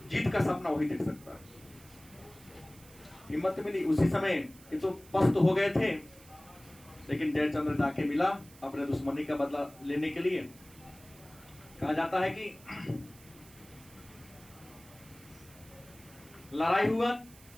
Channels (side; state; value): right; noise; hiss, 22 dB below the sound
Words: जीत का सपना वही देख सकता है। हिम्मत मिली उसी समय। ये तो पस्त हो गए थे, लेकिन जयचंद्र जाके मिला अपने दुश्मनी का बदला लेने के लिए। कहा जाता है कि लड़ाई हुआ